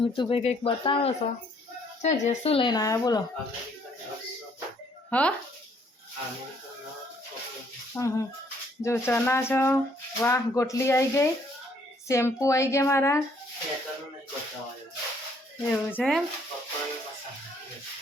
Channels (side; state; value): both; normal; correlation 0.65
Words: મિતુભાઈ કંઈક બતાવો છો છે જે શું લઈને આવ્યા બોલો. હા હા, જો ચના છો, વાહ ગોટલી આવી ગઈ, શેમ્પુ આવી ગયા મારા, એવું છે એમ.